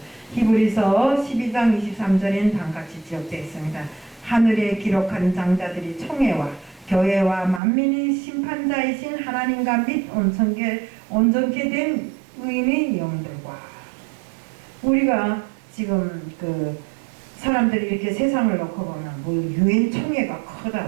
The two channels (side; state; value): left; drops out; at 7.6 s